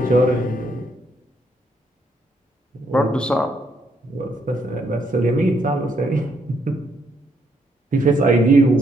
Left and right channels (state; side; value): normal; both; correlation 0.74